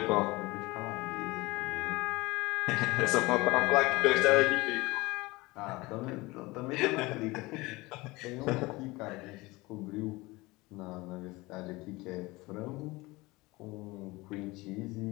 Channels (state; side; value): quieter; right; 22.0 dB